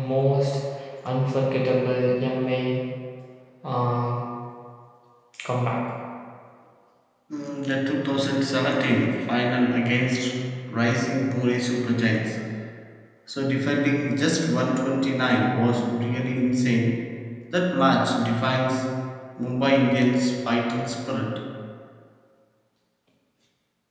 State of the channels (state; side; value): identical; both; correlation 1.00